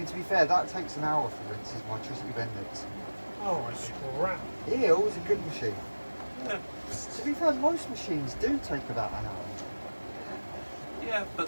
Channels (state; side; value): inverted; both; correlation -1.00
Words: to be fair, that takes an hour for rinses, my Tristy Bendix. Oh, crap. Eel is a good machine. Yeah. To be fair, most machines do take about an hour. Yeah, but